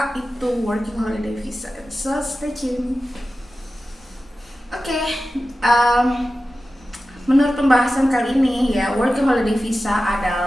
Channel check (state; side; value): normal; both; correlation 0.94